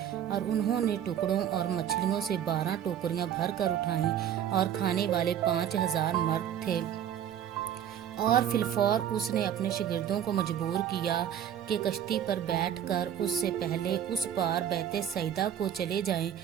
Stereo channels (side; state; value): left; quieter; 9.7 dB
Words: اور انہوں نے ٹکڑوں اور مچھلیوں سے 12 ٹوکریاں بھر کر اٹھائیں، اور کھانے والے 5000 مرد تھے۔ اور فی الفور اس نے اپنے شاگردوں کو مجبور کیا کہ کشتی پر بیٹھ کر اس سے پہلے اس پار بیت سیدہ کو چلے جائیں